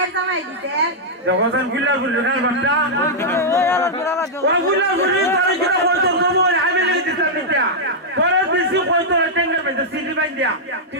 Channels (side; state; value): both; normal; correlation -0.07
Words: সময় দিতে যখন গুলা গুলা না বাচ্চা ও গুলা গুলি তার কিটা হইতো কবো আমি লে দিছলাম নিটা পরে বেশি হইতো টেঙ্গা বেতে সিডি বাইন দিয়া কি